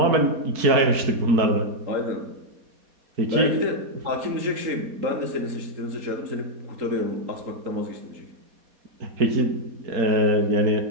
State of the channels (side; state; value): left; late; 4.2 ms